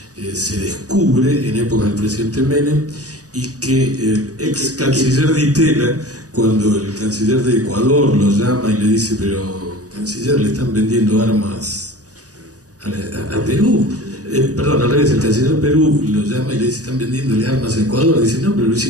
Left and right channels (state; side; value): late; left; 0.67 ms